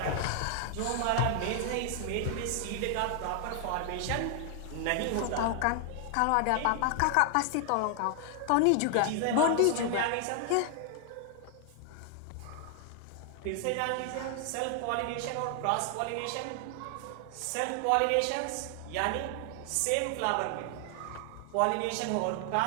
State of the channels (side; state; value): both; different; correlation 0.00